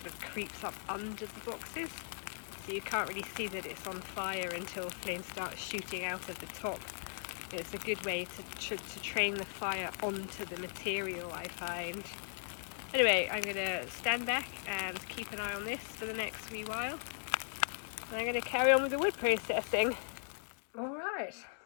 of creeps up under the boxes, so you can't really see that it's on fire until flames start shooting out of the top. It's a good way to train the fire onto the material, I find. Anyway, I'm going to stand back and keep an eye on this for the next wee while. And I'm going to carry on with the wood processing. Alright,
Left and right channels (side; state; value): right; silent; digital silence